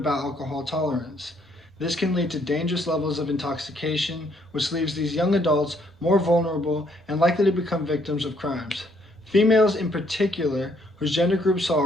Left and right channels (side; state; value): both; normal; correlation 0.68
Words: alcohol tolerance. This can lead to dangerous levels of intoxication, which leaves these young adults more vulnerable and likely to become victims of crimes. Females in particular, whose gender group saw a